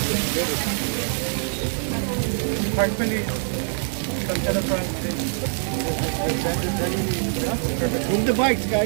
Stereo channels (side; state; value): left; silent; digital silence